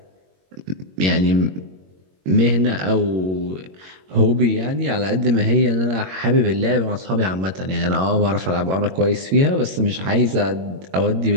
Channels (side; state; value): left; late; 21 ms